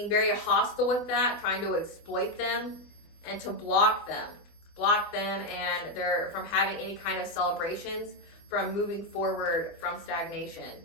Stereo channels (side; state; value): right; late; 24 ms